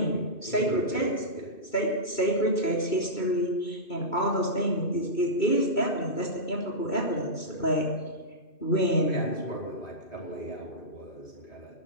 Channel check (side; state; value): right; late; 2.6 ms